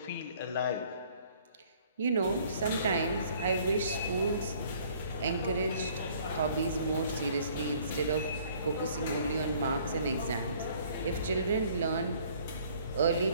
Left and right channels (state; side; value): inverted; both; correlation -0.58